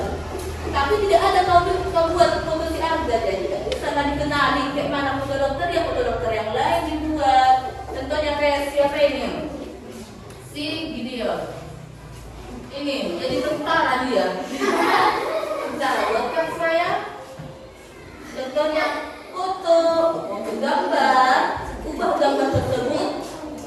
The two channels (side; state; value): both; identical; correlation 1.00